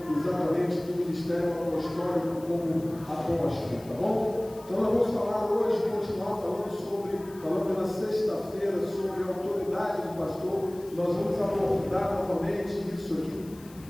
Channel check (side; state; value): left; noise; hiss, 23 dB below the sound